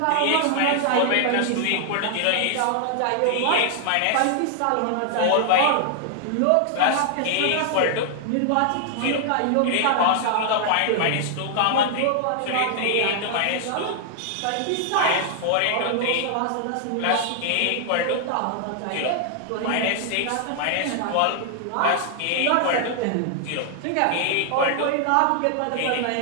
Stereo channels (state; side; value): different; both; correlation 0.00